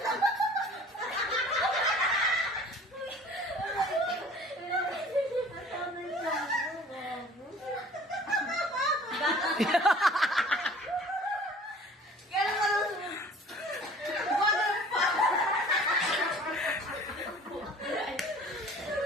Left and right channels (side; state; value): both; normal; correlation 0.48